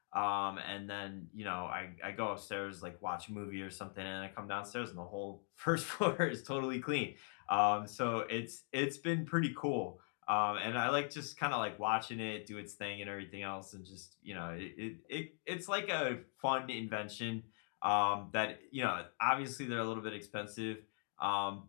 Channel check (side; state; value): right; silent; 51 dB below the other